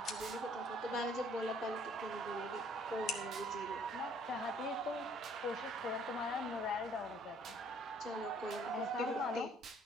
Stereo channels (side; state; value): both; normal; correlation 0.60